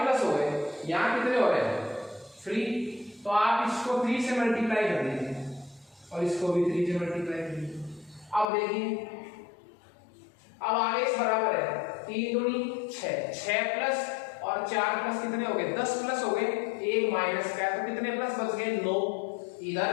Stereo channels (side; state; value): right; drops out; at 8.5 s